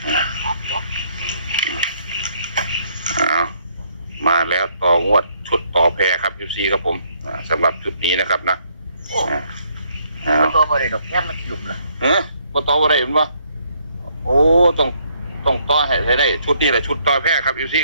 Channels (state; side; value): inverted; both; correlation -0.69